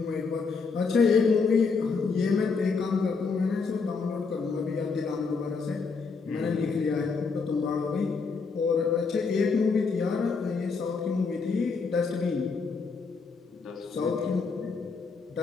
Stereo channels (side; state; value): right; quieter; 4.8 dB